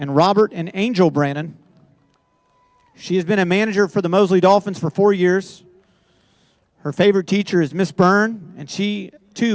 Robert and Angel Brannon. She has been a manager for the Mosley Dolphins for 4 years. Her favorite teacher is Miss Byrne, and she,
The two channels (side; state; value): both; identical; correlation 1.00